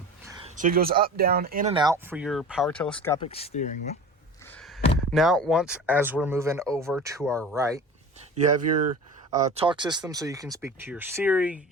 So it goes up, down, in and out for your power telescopic steering wheel. Now, as we're moving over to our right, you have your talk system, so you can speak to your Siri,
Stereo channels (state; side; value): normal; both; correlation 0.36